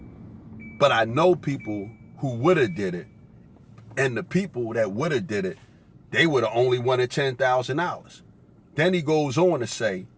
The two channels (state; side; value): identical; both; correlation 1.00